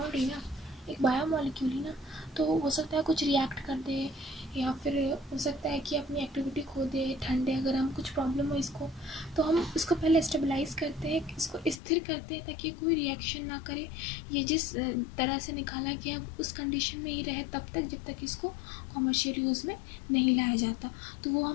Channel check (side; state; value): right; drops out; at 11.8 s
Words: ही ना, एक बायोमॉलिक्यूल ही ना, तो हो सकता है कुछ रिएक्ट कर दे या फिर हो सकता है कि अपनी एक्टिविटी खो दे, ठंडे अगर हम कुछ प्रॉब्लम हो इसको, तो हम इसको पहले स्टेबलाइज करते हैं, इसको स्थिर करते हैं ताकि कोई रिएक्शन ना करे, ये जिस तरह से निकाला गया उस कंडीशन में ही रहे तब तक जब तक इसको कॉमर्शियल यूज़ में नहीं लाया जाता। तो वो